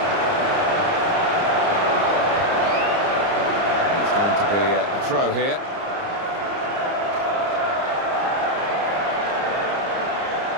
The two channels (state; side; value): late; left; 30 ms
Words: Be a throw here.